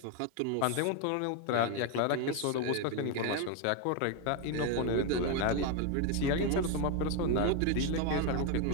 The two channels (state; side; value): different; both; correlation 0.01